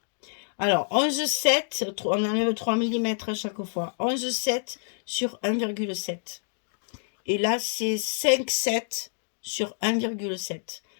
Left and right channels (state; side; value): silent; right; digital silence